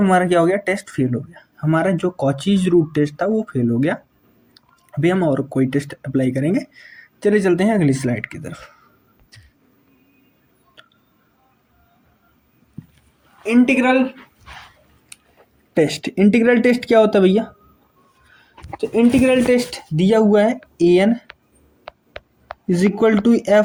क्या हो गया, टेस्ट फेल हो गया, हमारा जो कॉचीज रूट टेस्ट था वो फेल हो गया। अभी हम और कोई टेस्ट अप्लाई करेंगे। चलिए चलते हैं अगली स्लाइड की तरफ। इंटीग्रल टेस्ट, इंटीग्रल टेस्ट क्या होता है भैया, तो इंटीग्रल टेस्ट दिया हुआ है an is equal to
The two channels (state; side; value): identical; both; correlation 1.00